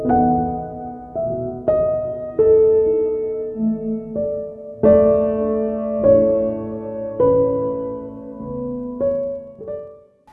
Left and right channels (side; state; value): both; identical; correlation 1.00